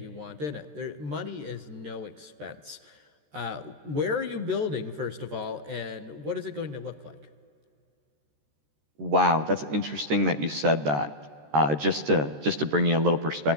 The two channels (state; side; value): late; left; 14 ms